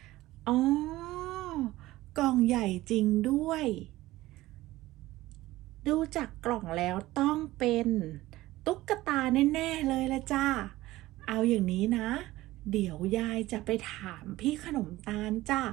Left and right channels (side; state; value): left; quieter; 17.3 dB